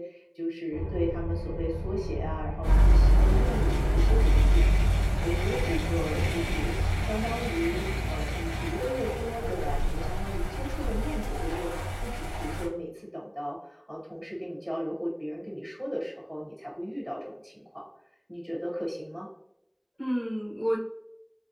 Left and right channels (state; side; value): identical; both; correlation 1.00